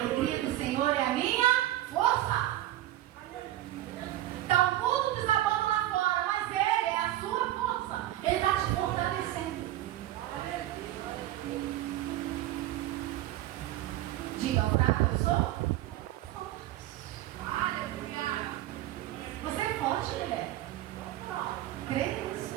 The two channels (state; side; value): quieter; left; 14.4 dB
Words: do Senhor é a minha força. Está o mundo desabando lá fora, mas Ele é a sua força. Ele está te fortalecendo. Diga ao fraco: eu sou forte. Você é forte, mulher. Crê